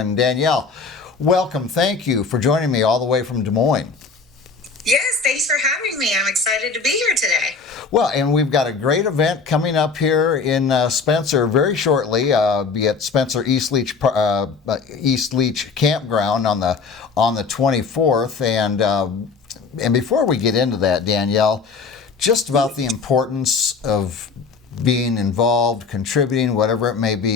Danielle, welcome. Thank you for joining me all the way from Des Moines. Yes, thanks for having me. I'm excited to be here today. Well, and we've got a great event coming up here in Spencer very shortly. Be at Spencer East Leach Campground on the 24th. And before we get into that, Danielle, just about the importance of being involved, contributing, whatever it may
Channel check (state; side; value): quieter; right; 4.9 dB